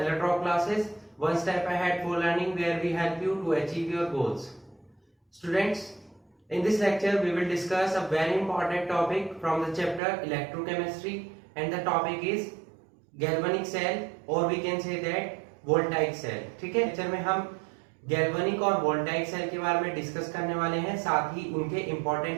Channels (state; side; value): drops out; left; at 10.0 s